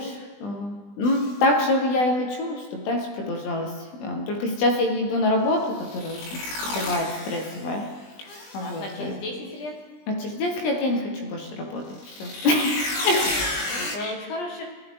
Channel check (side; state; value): right; late; 20 ms